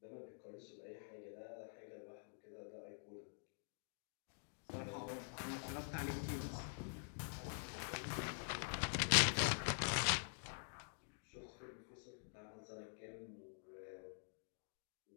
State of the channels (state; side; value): silent; right; digital silence